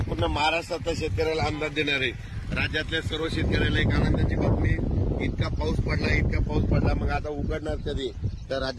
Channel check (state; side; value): identical; both; correlation 1.00